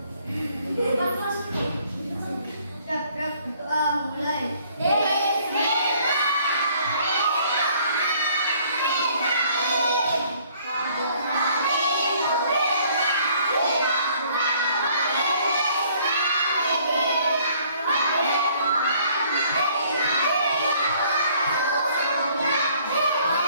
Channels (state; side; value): inverted; both; correlation -0.60